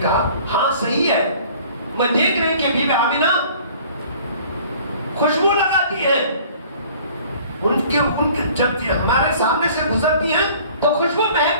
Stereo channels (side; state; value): both; inverted; correlation -0.51